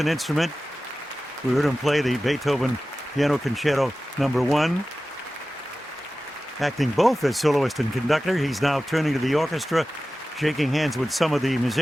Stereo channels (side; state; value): both; normal; correlation 0.95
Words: instrument. We heard him play the Beethoven Piano Concerto Number 1. Acting both as soloist and conductor, he's now turning to the orchestra, shaking hands with some of the